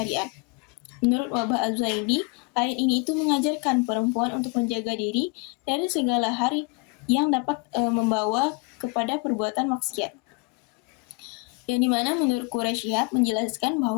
Menurut Wahbah Az-Zuhaili, ayat ini itu mengajarkan perempuan untuk menjaga diri dari segala hal yang dapat membawa kepada perbuatan maksiat. Yang dimana menurut Quraisy Shihab menjelaskan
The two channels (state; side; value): quieter; right; 29.5 dB